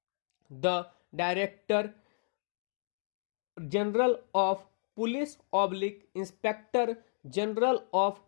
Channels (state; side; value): silent; right; digital silence